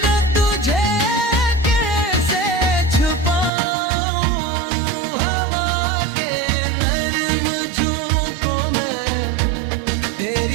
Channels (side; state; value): left; drops out; at 3.5 s